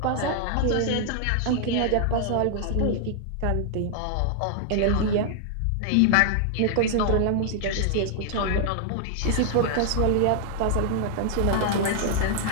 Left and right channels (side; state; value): both; different; correlation 0.00